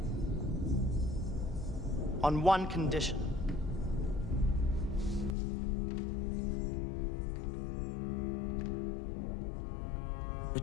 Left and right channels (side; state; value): right; drops out; at 5.4 s